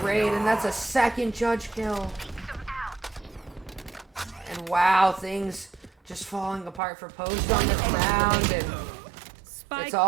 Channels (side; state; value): left; drops out; at 6.8 s